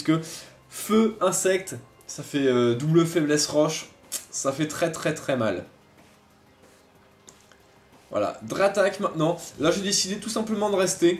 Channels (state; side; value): identical; both; correlation 1.00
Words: feu, insecte, ça fait double faiblesse roche, ça fait très mal. Voilà, Dratak maintenant. Là j'ai décidé tout simplement de